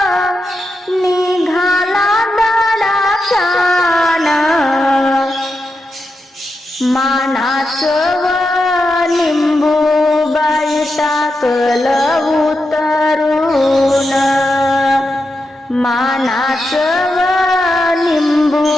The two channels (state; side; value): normal; both; correlation 0.87